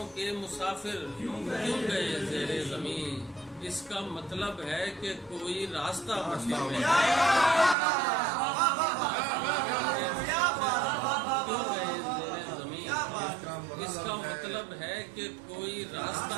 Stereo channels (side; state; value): left; drops out; at 7.8 s